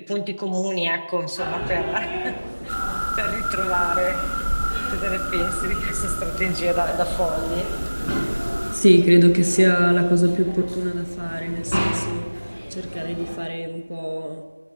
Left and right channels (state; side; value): inverted; both; correlation -1.00